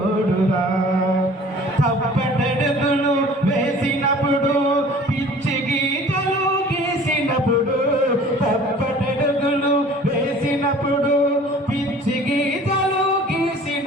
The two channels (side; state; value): both; normal; correlation 0.48